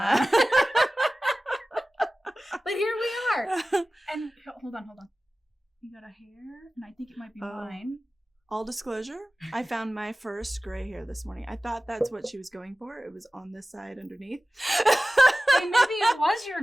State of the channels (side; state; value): both; normal; correlation 0.97